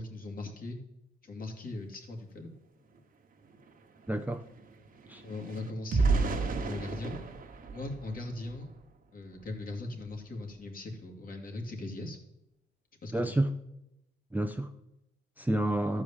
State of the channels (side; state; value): both; normal; correlation 0.83